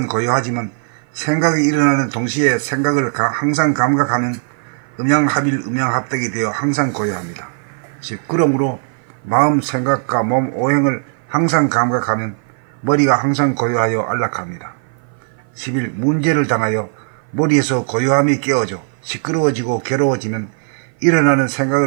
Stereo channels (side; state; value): left; silent; 56 dB below the other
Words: 고요하지만 생각이 일어나는 동시에 생각을 항상 감각하는 음양합일 음양합백이 되어 항상 고요합니다. 즉 그러므로 마음 생각과 몸 오행을 항상 감각하면 머리가 항상 고요하여 안락합니다. 11. 문제를 당하여 머리에서 고요함이 깨어져 시끄러워지고 괴로워지면 일어나는